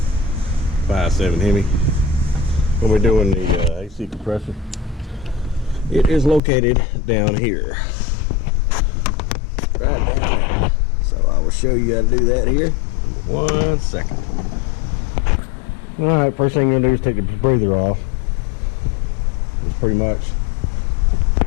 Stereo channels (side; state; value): right; drops out; at 6.4 s